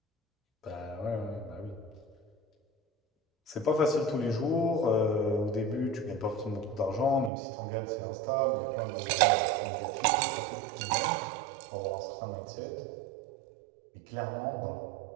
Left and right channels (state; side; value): drops out; left; at 7.3 s